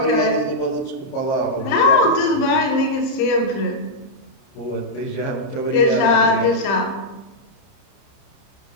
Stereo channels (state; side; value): late; right; 30 ms